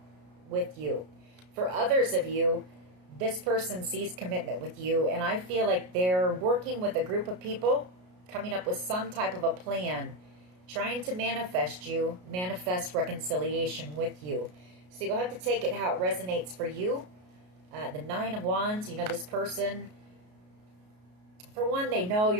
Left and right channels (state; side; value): late; left; 33 ms